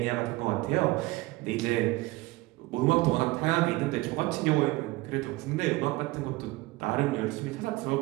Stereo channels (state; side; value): quieter; left; 20.6 dB